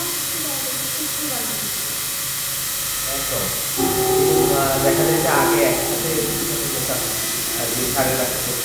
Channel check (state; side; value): identical; both; correlation 1.00